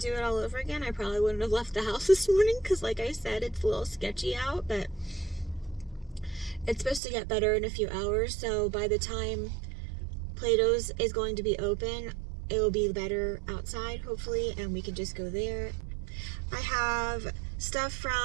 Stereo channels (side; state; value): left; drops out; at 7.0 s